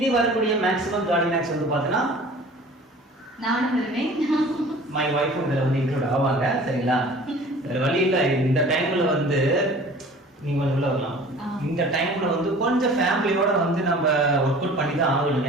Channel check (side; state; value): both; normal; correlation 0.45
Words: வரக்கூடிய மேக்ஸிமம் ஜாலி மேக்ஸ் வந்து பார்த்தீங்கன்னா நானும் வருவேன், மை ஒய்ஃபும் இதில் வந்து இன்க்ளூட் ஆவாங்க. சரிங்களா? வேறு வழி இல்லை. இந்த டைமில் வந்து நீங்கள் கொஞ்சம் உள்ள வரலாம். இந்த டைம்ல வந்து கொஞ்சம் ஃபேமிலியோட வந்து நம்ம ஒர்க் அவுட் பண்ணி தான் ஆகணும்.